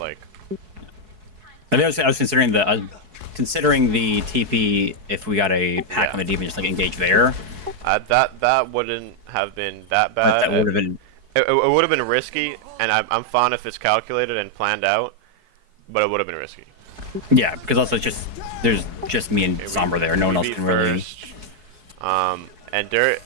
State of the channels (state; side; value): late; left; 4.7 ms